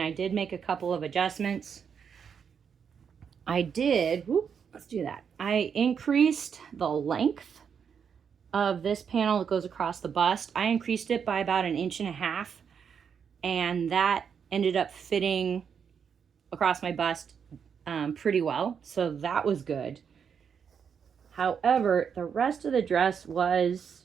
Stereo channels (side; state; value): left; quieter; 7.1 dB